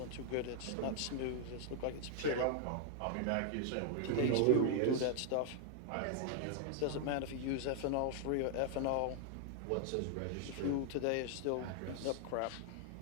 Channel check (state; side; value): different; both; correlation 0.00